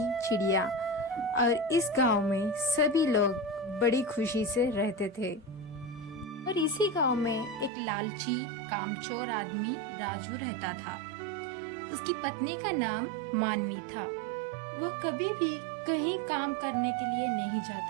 चिड़िया, और इस गांव में सभी लोग बड़ी खुशी से रहते थे। और इसी गांव में एक लालची कामचोर आदमी राजू रहता था। उसकी पत्नी का नाम मानवी था। वह कभी भी कहीं काम करने के लिए नहीं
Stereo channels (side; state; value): left; drops out; at 7.7 s